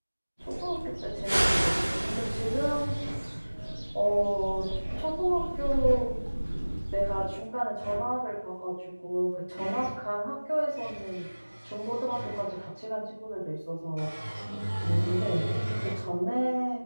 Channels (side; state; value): both; inverted; correlation -1.00